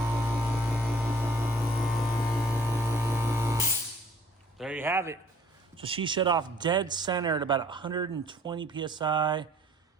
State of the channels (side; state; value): both; normal; correlation 0.56